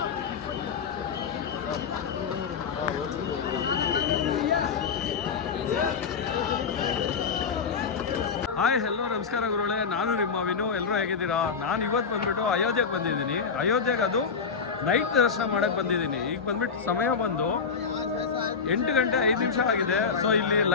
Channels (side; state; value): right; quieter; 5.7 dB